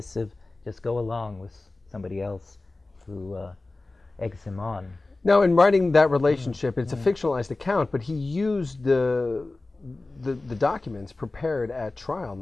just go along with somebody else who eggs him on? Now, in writing that relationship, it's a fictionalized account, but he used the documents prepared at trial and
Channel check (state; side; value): quieter; right; 3.2 dB